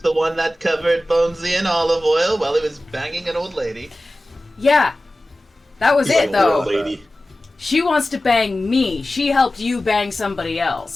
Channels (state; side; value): normal; both; correlation 0.96